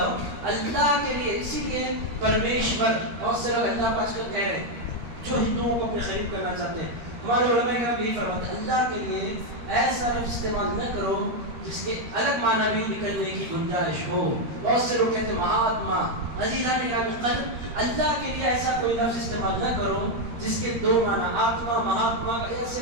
ہو اللہ کے لیے. اسی لیے پرمیشور، بہت سے لوگ اللہ پاک کر کہہ رہے ہیں جو ہندوؤں کو اپنے قریب کرنا چاہتے ہیں. ہمارے علماء کرام یہی فرماتے ہیں اللہ کے لیے ایسا لفظ استعمال نہ کرو جس کے الگ معنی بھی نکلنے کی گنجائش ہو. بہت سے لوگ کہتے ہیں مہاتما. عزیزان قلب، اللہ کے لیے ایسا کوئی لفظ استعمال نہ کرو جس کے دو معنی، آتما، مہاتما،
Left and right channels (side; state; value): left; late; 13 ms